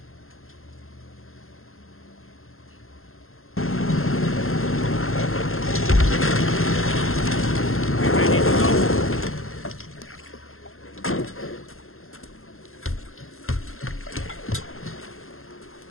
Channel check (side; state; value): right; late; 0.61 ms